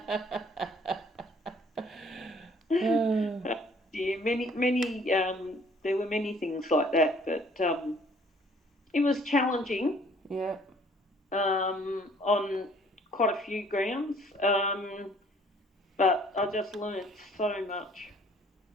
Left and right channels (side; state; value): both; normal; correlation 0.58